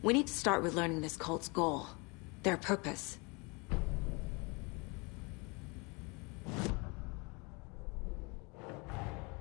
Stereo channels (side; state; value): right; quieter; 29.1 dB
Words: We need to start with learning this cult's goal, their purpose.